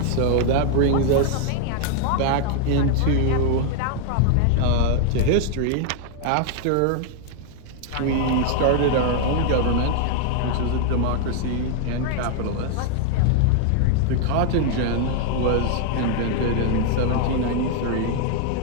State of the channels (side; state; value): both; different; correlation 0.00